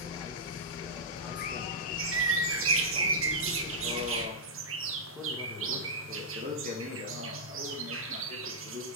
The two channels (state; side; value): normal; both; correlation -0.12